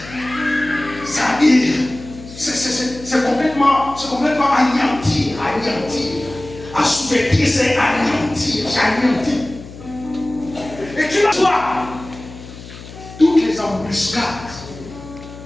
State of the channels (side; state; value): left; noise; hum, 16 dB below the sound